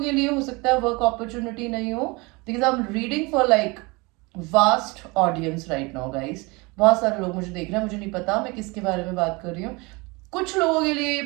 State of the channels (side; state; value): left; quieter; 26.1 dB